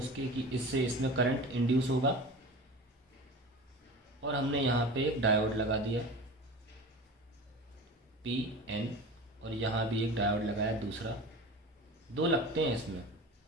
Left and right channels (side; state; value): both; normal; correlation 0.34